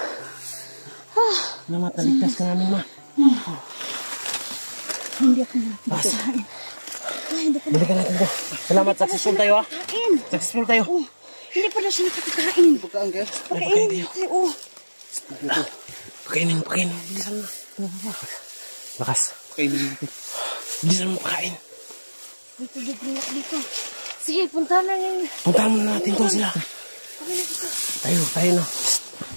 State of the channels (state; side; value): inverted; both; correlation -1.00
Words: Salamat, naligtas ka namin, ma. Hindi ako nakakain. Balikan natin ko. Salamat, successful tayo ha. Kain. Successful tayo. Oh, hindi pala siya nakakakain. Pagkaan kayo. Pagkain tayo. Oh. Pakainin. Bilisan mo. Lakas. Kainin natin. Bilisan mo pakain. May tubig rin ako dito. Sige, punta na ngayon. Puntahan mo na natin to sila. Tayo na.